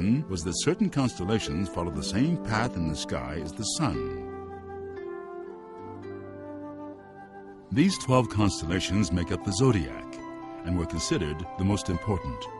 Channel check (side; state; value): both; identical; correlation 1.00